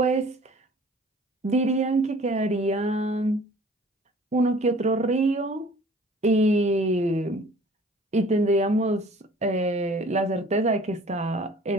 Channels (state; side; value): normal; both; correlation 0.50